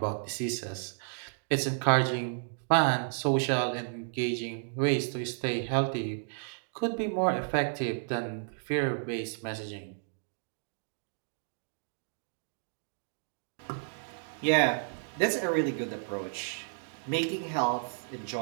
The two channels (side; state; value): left; silent; digital silence